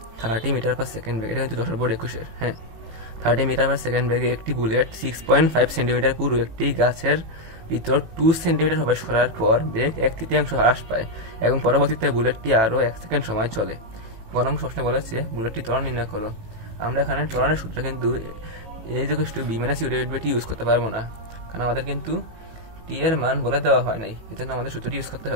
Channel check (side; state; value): left; late; 18 ms